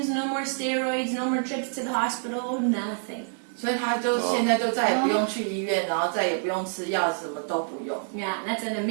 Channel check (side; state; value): left; silent; 60 dB below the other